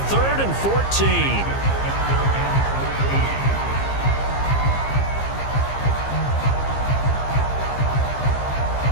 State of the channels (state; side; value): late; right; 15 ms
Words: 3rd and 14.